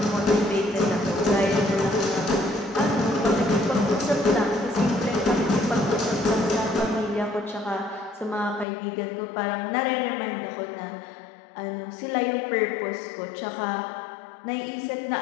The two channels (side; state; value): right; drops out; at 8.7 s